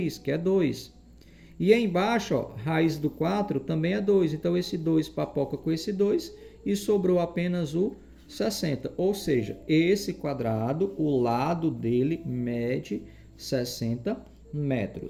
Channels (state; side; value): identical; both; correlation 1.00